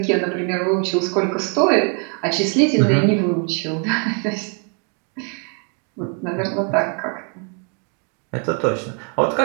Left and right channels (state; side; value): quieter; left; 39.0 dB